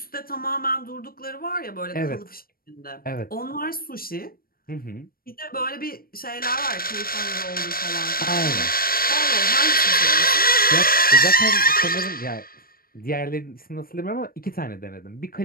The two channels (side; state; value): right; late; 0.43 ms